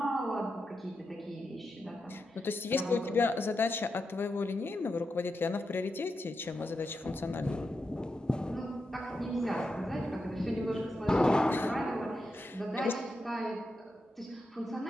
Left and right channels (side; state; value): both; normal; correlation 0.87